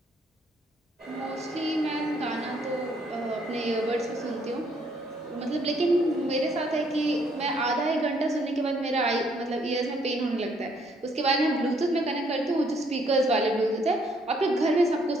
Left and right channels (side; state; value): both; normal; correlation 0.68